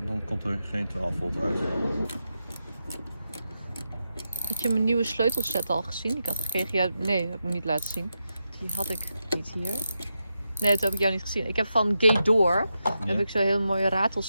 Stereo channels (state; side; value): inverted; both; correlation -0.87